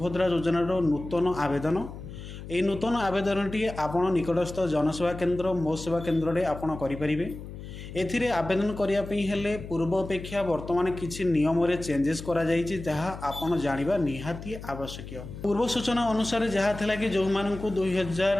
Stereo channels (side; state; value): left; noise; hum, 12 dB below the sound